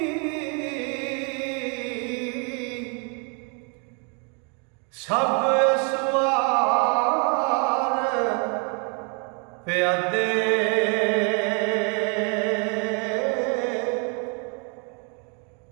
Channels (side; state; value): left; quieter; 37.4 dB